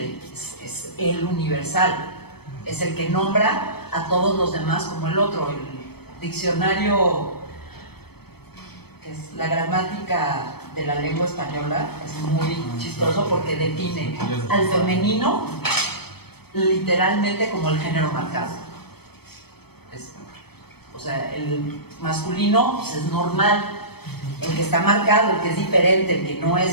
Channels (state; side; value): late; right; 0.97 ms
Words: es el universal, es el que nombra a todos los demás como el otro. El diccionario, que es la gramática de la lengua española, es muy chistoso porque define al femenino literalmente como el género marcado. O sea, el masculino pues, es normal, el que está marcado, el que es diferente, el que no es,